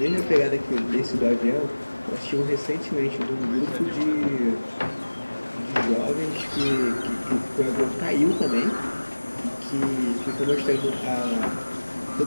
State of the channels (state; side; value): inverted; both; correlation -1.00